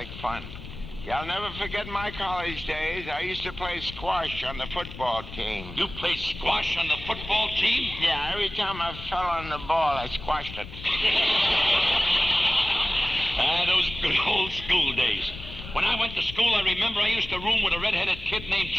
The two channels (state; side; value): noise; left; rumble, 13 dB below the sound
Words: fun. I'll never forget my college days. I used to play squash on the football team. You played squash on the football team? Yeah, every time I fell on the ball, I squashed it. Those good old school days. When I went to school, I remember I used to room with a red-headed kid named